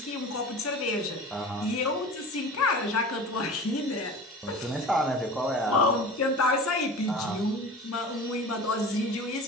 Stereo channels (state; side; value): normal; both; correlation 0.36